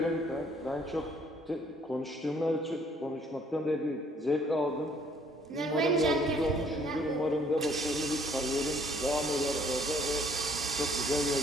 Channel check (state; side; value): normal; both; correlation 0.62